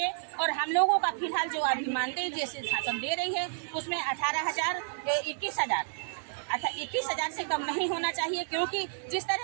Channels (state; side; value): silent; left; digital silence